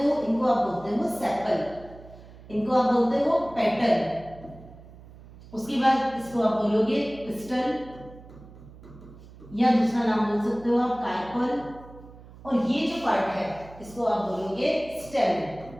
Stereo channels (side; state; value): right; noise; hum, 19 dB below the sound